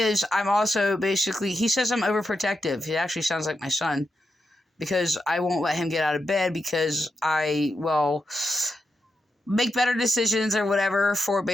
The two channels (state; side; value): normal; both; correlation 0.86